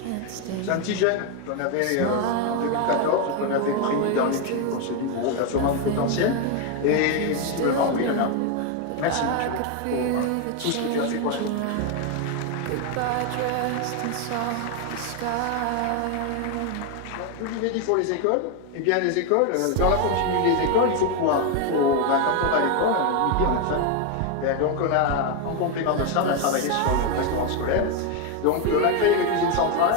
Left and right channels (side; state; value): both; different; correlation 0.02